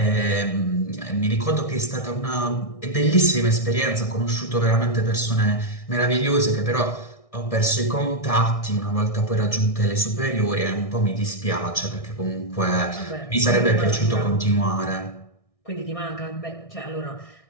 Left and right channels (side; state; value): right; late; 1.6 ms